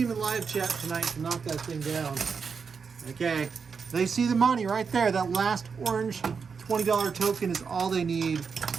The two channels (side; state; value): left; quieter; 5.7 dB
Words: in live chat tonight to knock that thing down. Okay, they see the money right there. That last orange $20 token is all they need